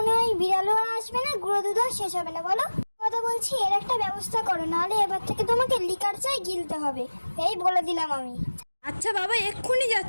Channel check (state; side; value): inverted; both; correlation -1.00